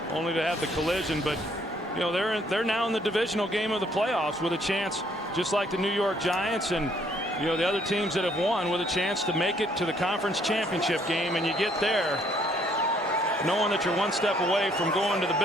only to have the collision. But you know, they're now in the divisional game of the playoffs with a chance, just like the New York Giants and you know the other teams that have won, with a chance to make it to the conference championship game. And you get there knowing that you're 1 step away from going to the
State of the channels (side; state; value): both; normal; correlation 0.66